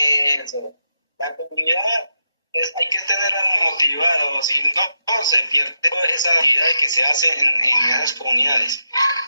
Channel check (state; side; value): inverted; both; correlation -0.86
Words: La comunidad hay que tenerla motivada, si no, se pierde toda esa actividad que se hace en esas comunidades.